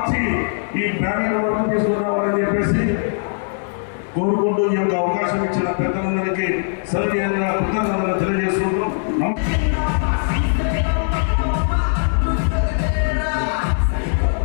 ఈ బ్యానర్ వరకు తీసుకురావాలని చెప్పేసి కోరుకుంటూ ఈ యొక్క అవకాశం ఇచ్చిన పెద్దలందరికీ సౌజన్యంగా కృతజ్ఞతలు తెలియజేస్తున్నారు.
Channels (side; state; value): right; silent; digital silence